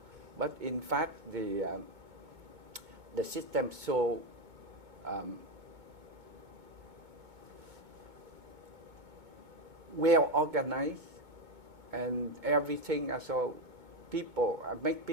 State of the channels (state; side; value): late; left; 2.2 ms